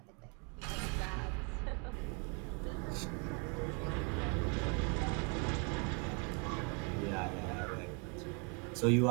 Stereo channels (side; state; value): left; quieter; 35.4 dB